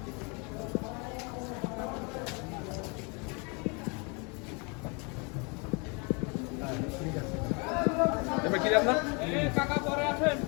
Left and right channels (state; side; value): quieter; right; 32.2 dB